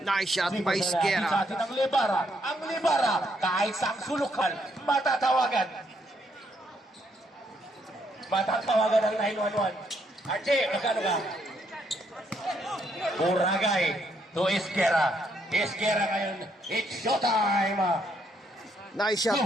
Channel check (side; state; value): both; normal; correlation 0.73